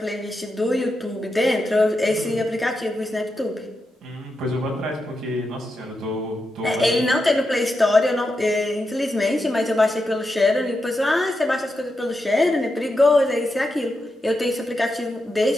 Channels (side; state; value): both; normal; correlation 0.87